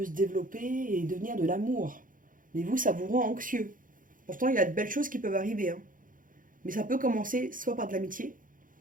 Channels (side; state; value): left; late; 0.39 ms